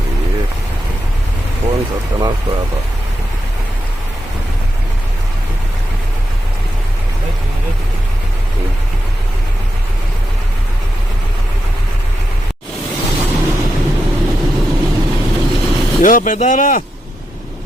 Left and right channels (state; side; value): normal; both; correlation 0.86